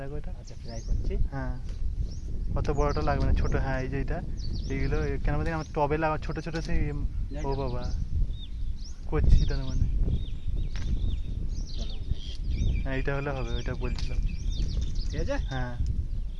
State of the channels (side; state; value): both; identical; correlation 1.00